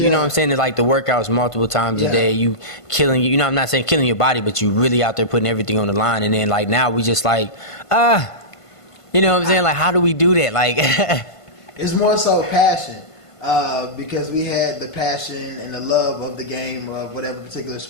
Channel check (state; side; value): late; right; 1.5 ms